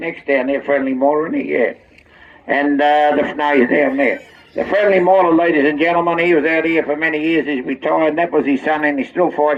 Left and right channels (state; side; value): identical; both; correlation 1.00